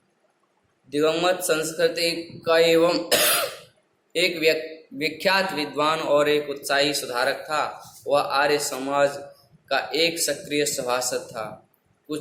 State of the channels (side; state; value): both; identical; correlation 1.00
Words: दिवंगत संस्कृति का एवं एक विख्यात विद्वान और एक उत्साही सुधारक था। वह आर्य समाज का एक सक्रिय सभासद था।